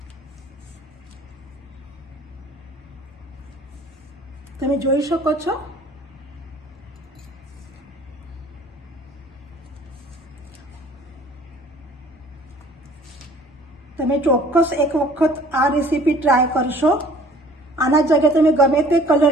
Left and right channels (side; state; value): both; normal; correlation 0.52